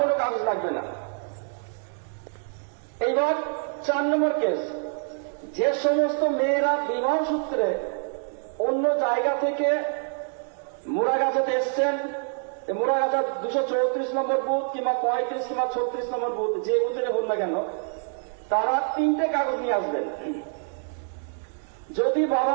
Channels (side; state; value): left; silent; 61 dB below the other